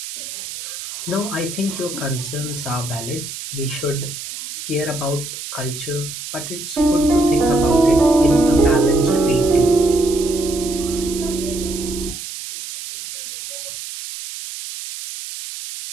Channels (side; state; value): right; noise; hiss, 9 dB below the sound